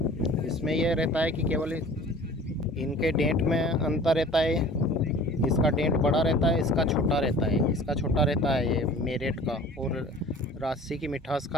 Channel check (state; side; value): normal; both; correlation 0.45